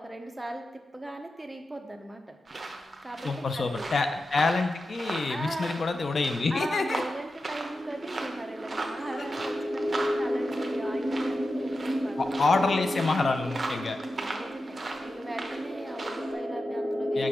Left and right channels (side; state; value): both; normal; correlation 0.91